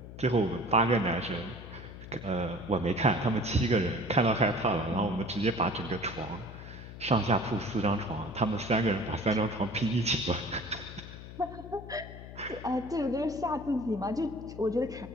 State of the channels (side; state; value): left; noise; hum, 13 dB below the sound